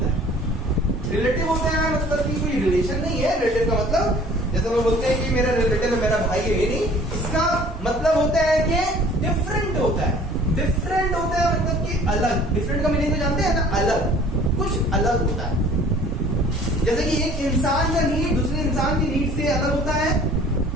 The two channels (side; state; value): both; normal; correlation 0.51